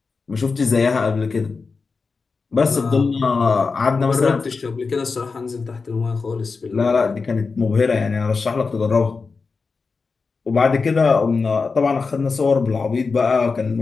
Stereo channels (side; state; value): right; quieter; 4.6 dB